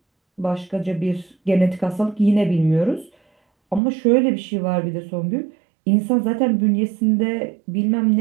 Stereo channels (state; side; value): drops out; left; at 3.8 s